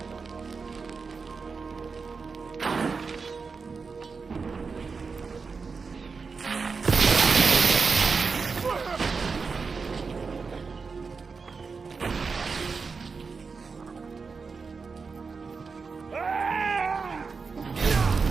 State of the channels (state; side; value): quieter; left; 4.9 dB